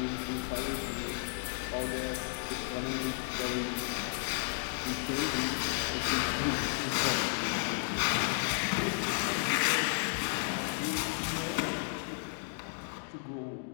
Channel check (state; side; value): silent; right; digital silence